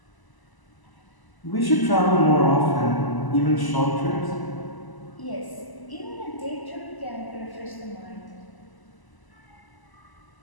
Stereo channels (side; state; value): right; late; 1.0 ms